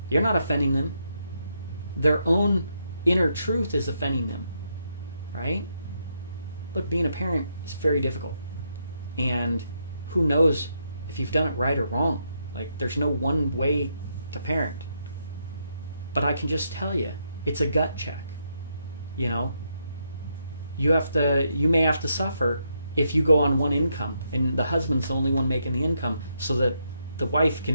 You're not offending them. Their own inner truth is offending them, right? Look, being a parent is very difficult. And who knows if you've done it right or wrong. Like, there's no one way to parent. But I can just tell you, it's a gut check. You may have to suffer if you go on one income and the husband's the only one making the income, so that the wife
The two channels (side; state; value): both; inverted; correlation -0.79